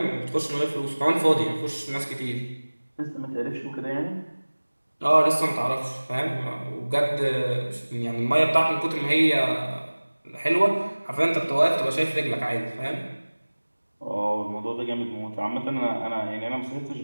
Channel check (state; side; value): inverted; both; correlation -1.00